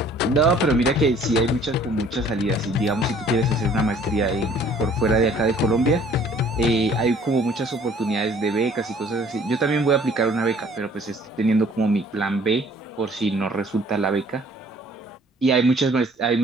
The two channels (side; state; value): both; normal; correlation 0.55